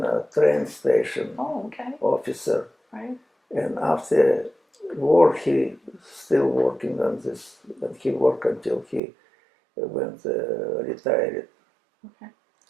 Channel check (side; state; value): left; drops out; at 9.0 s